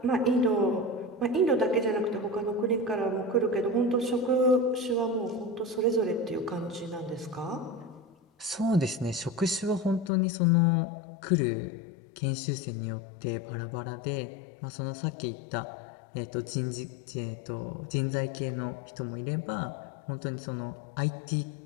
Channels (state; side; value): drops out; right; at 10.1 s